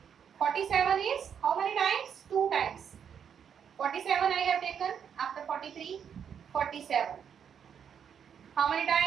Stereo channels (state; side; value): quieter; left; 7.8 dB